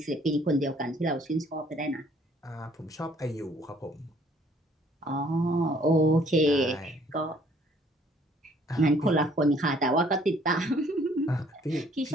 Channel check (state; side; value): normal; both; correlation 0.61